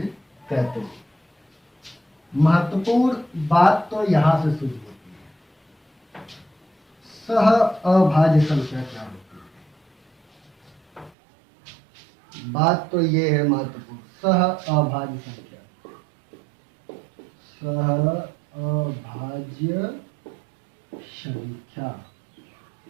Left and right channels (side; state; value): left; drops out; at 11.1 s